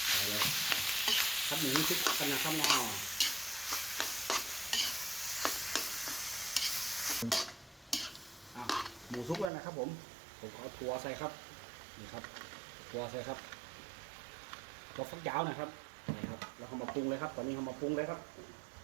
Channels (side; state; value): left; drops out; at 9.5 s